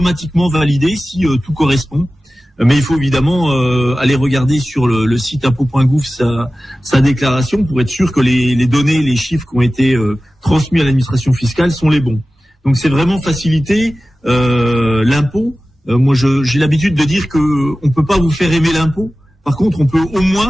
validée si tout correspond. Mais il faut évidemment aller regarder sur le site impôt.gouv sa déclaration pour être sûr que les données, les chiffres qui ont été transmis à l'administration fiscale sont les bons. Donc c'est vraiment faciliter l'impôt. Moi j'ai l'habitude de dire que on peut pas vous faire aimer l'impôt. Par contre, on peut au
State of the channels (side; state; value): both; normal; correlation 0.95